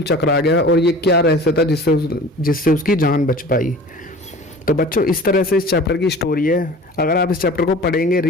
चकरा गया, और ये क्या रहस्य था जिससे उसकी जान बच पाई। तो बच्चों इस तरह से इस चैप्टर की स्टोरी है। अगर आप इस चैप्टर को पढ़ेंगे,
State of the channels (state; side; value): normal; both; correlation 0.41